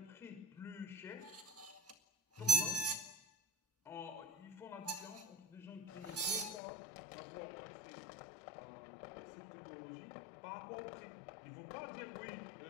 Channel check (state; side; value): drops out; right; at 6.6 s